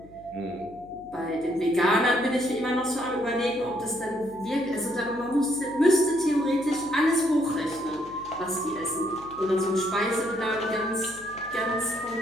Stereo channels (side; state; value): left; noise; hum, 23 dB below the sound